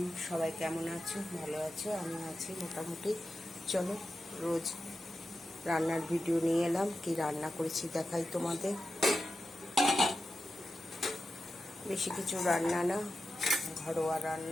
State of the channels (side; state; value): both; normal; correlation 0.91